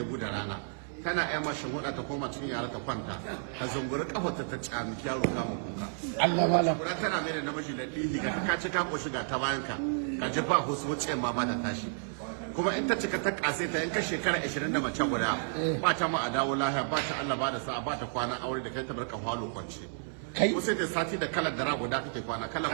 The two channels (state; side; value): silent; left; 57 dB below the other